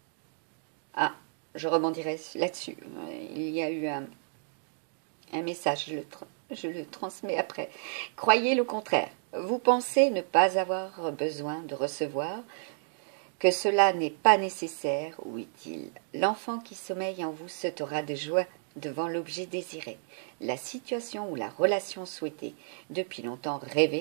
Ah, je rebondirai là-dessus. Il y a eu un message, je le transmets après. Croyez le contraire. Vous pensez ne pas avoir besoin de recevoir, que cela n'est pas nécessaire ou utile. L'enfant qui sommeille en vous sautera de joie devant l'objet désiré, la situation ou la relation souhaitée, depuis longtemps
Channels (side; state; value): left; silent; digital silence